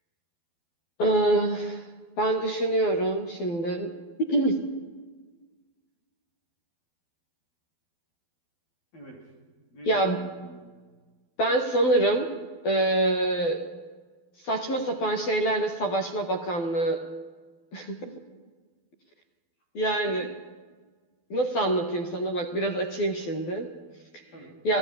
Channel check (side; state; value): right; late; 12 ms